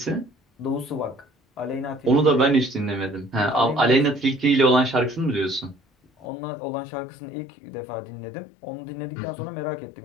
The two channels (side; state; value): right; drops out; at 6.2 s